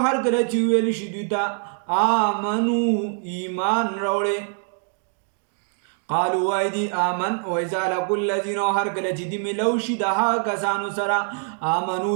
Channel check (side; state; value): left; silent; 59 dB below the other